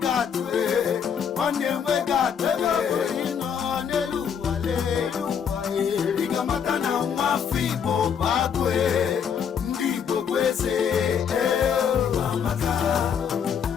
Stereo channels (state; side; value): quieter; right; 7.5 dB